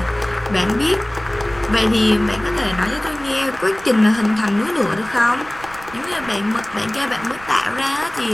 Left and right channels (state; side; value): noise; right; rumble, 19 dB below the sound